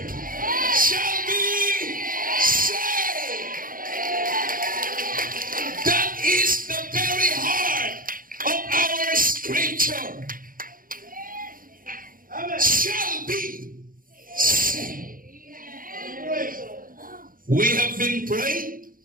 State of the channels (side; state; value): left; late; 0.41 ms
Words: shall be saved. That is the very heart of our scripture. Shall be saved. We have been praying,